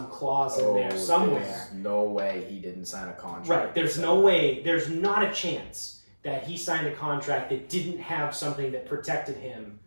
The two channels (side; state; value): both; inverted; correlation -1.00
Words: clause in there somewhere. There's no way he didn't sign a contract. Right, there's no way, there's not a chance that he signed a contract that didn't have something that protected him